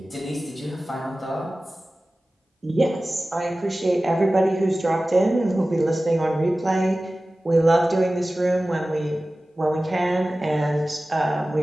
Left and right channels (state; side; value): normal; both; correlation 0.96